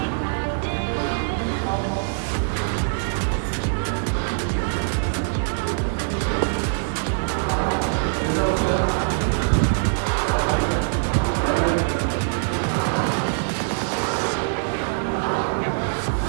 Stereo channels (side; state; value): left; silent; digital silence